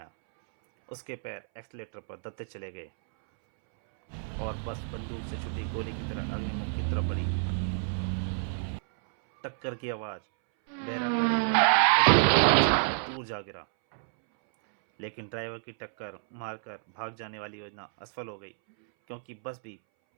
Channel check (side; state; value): left; silent; 58 dB below the other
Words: उसके पैर एक्सीलेटर पर दबते चले गए और बस बंदूक से छुटी गोली की तरह अग्निमुख की तरफ बढ़ी। टक्कर की आवाज बहरा कर देने वाली थी। अग्निमुख उछलकर दूर जा गिरा। लेकिन ड्राइवर की टक्कर मारकर भाग जाने वाली योजना असफल हो गई, क्योंकि बस भी